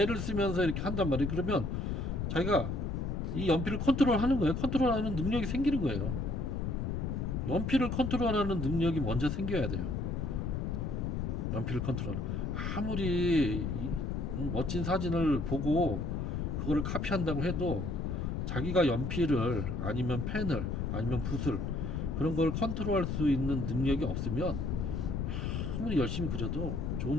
쓰면서 이렇게 한단 말이에요. 그러면 자기가 이 연필을 컨트롤하는 거예요. 컨트롤하는 능력이 생기는 거예요. 연필을 컨트롤하는 능력이 먼저 생겨야 돼요. 연필을 컨트롤. 아무리 멋진 사진을 보고 그거를 카피한다고 해도 자기가 연필을 아니면 펜을 아니면 붓을 그런 걸 컨트롤할 수 있는 능력이 없으면 아무리 열심히 그려도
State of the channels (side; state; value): left; noise; rumble, 1 dB below the sound